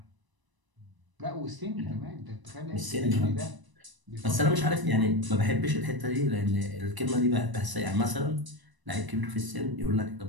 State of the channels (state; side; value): late; left; 1.0 ms